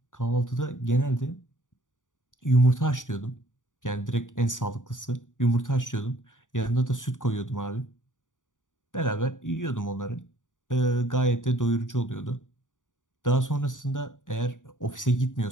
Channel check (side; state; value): right; late; 0.87 ms